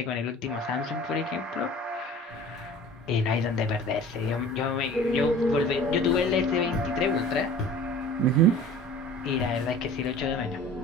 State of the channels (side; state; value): both; normal; correlation 0.43